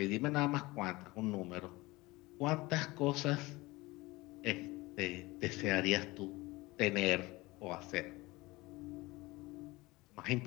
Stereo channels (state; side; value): quieter; right; 21.4 dB